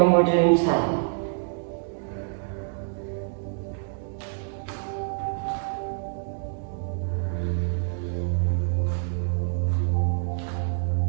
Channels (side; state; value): left; silent; digital silence